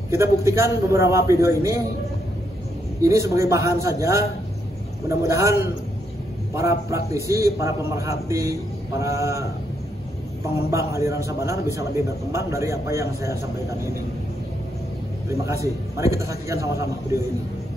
Kita buktikan beberapa video ini sebagai bahan saja. Mudah-mudahan para praktisi, para pemerhati, para pengembang aliran Sabanar bisa lebih berkembang dari apa yang saya sampaikan ini. Terima kasih. Mari kita saksikan sama-sama video ini.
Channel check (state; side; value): normal; both; correlation 0.78